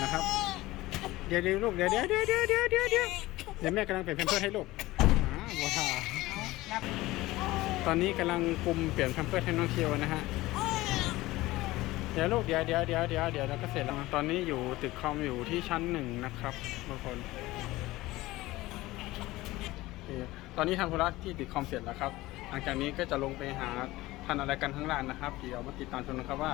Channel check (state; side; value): quieter; right; 18.5 dB